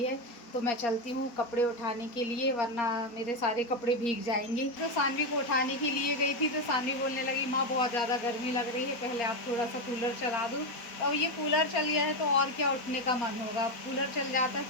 है। तो मैं चलती हूँ कपड़े उठाने के लिए, वरना मेरे सारे कपड़े भीग जाएंगे। तो सानवी को उठाने के लिए गई थी तो सानवी बोलने लगी माँ बहुत ज़्यादा गर्मी लग रही है, पहले आप थोड़ा सा कूलर चला दो। अब ये कूलर चल गया है तो और क्या उठने का मन होगा। कूलर चल जाता है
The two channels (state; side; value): late; right; 4.3 ms